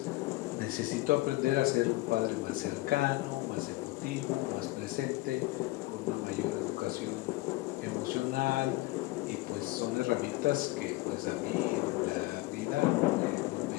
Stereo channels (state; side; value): quieter; right; 20.3 dB